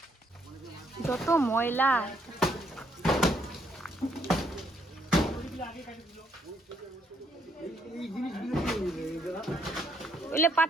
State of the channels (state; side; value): normal; both; correlation 0.72